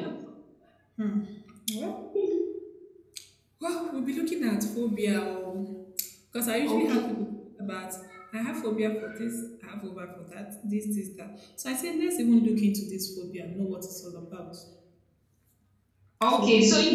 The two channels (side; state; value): both; identical; correlation 1.00